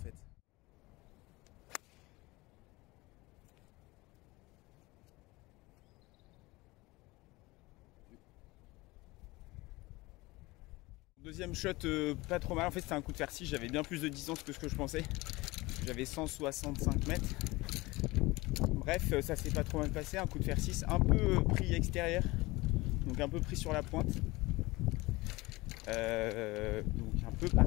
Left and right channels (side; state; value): right; quieter; 21.6 dB